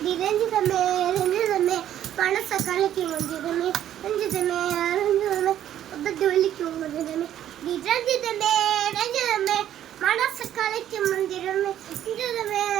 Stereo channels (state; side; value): quieter; left; 11.3 dB